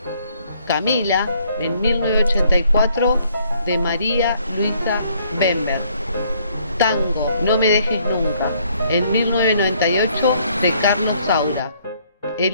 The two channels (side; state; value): both; inverted; correlation -0.66